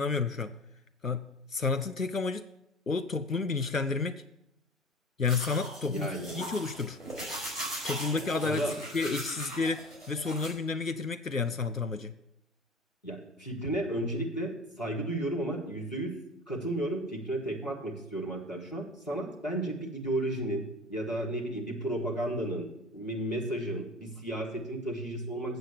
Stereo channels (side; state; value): both; normal; correlation 0.38